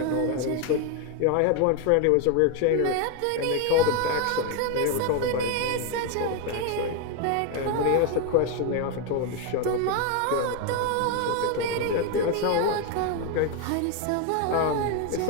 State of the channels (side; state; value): both; different; correlation 0.01